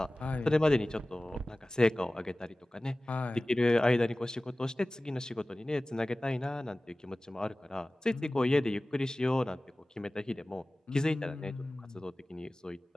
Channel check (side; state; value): both; normal; correlation 0.98